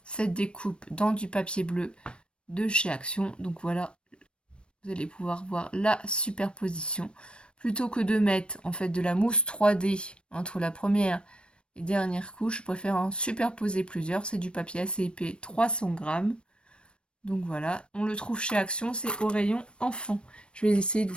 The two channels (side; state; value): right; late; 0.057 ms